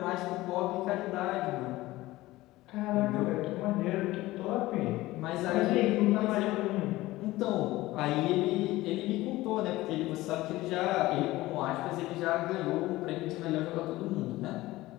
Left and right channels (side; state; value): right; quieter; 18.0 dB